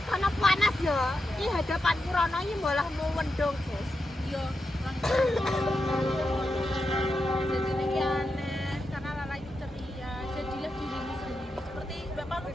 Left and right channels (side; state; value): both; normal; correlation 0.87